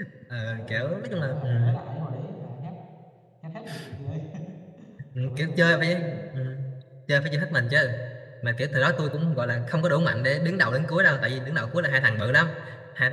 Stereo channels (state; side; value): identical; both; correlation 1.00